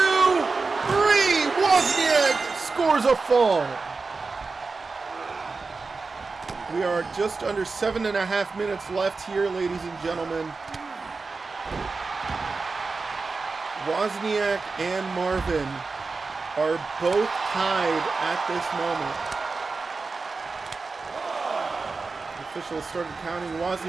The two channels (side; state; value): left; quieter; 4.2 dB